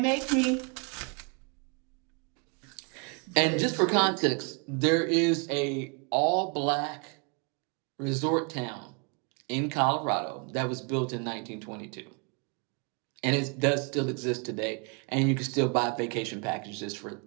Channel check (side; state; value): left; quieter; 35.5 dB